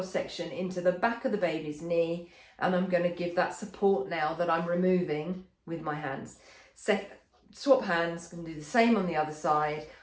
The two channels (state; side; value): identical; both; correlation 1.00